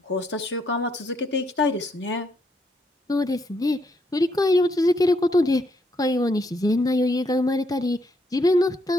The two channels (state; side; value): normal; both; correlation 0.74